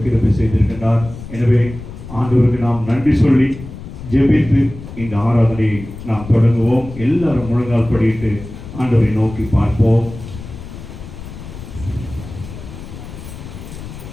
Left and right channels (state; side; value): noise; left; rumble, 13 dB below the sound